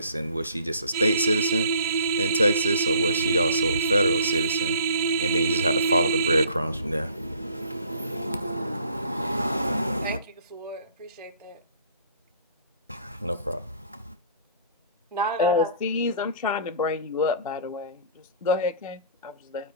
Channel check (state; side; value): inverted; both; correlation -0.54